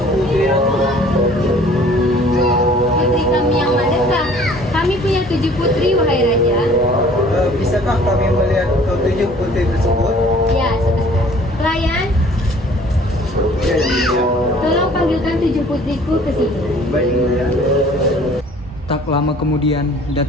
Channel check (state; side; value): normal; both; correlation 0.52